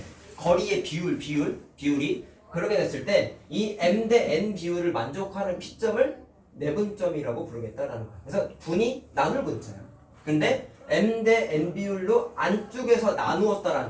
거리의 비율이 그렇게 됐을 때 이 M 대 N 비율을 만족하는 P점을 내분점이라고 부르겠다라는 거야. 그래서 분이 나눌 분자야. 근데 M 대 N 비율로 안쪽에서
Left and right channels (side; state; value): both; identical; correlation 1.00